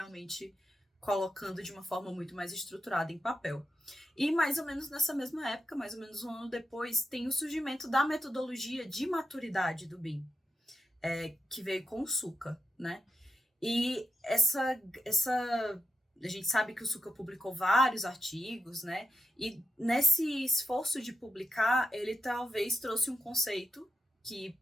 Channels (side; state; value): both; normal; correlation 0.87